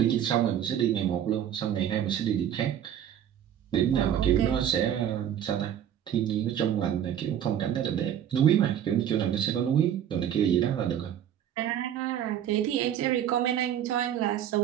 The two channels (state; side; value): quieter; left; 10.1 dB